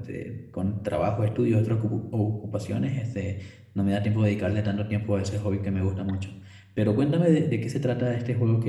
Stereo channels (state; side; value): identical; both; correlation 1.00